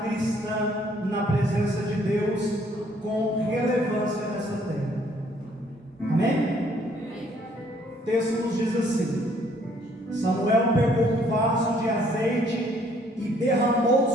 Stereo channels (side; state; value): both; normal; correlation 0.64